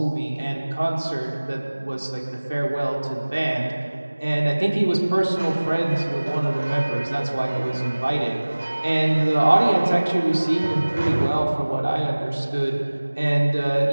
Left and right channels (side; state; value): both; inverted; correlation -1.00